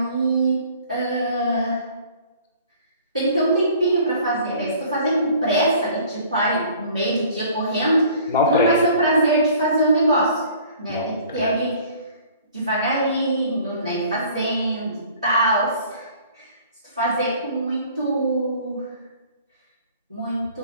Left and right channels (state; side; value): inverted; both; correlation -0.52